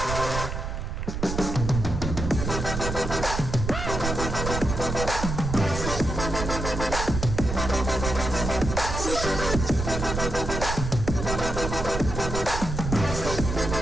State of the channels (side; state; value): right; noise; rumble, 4 dB below the sound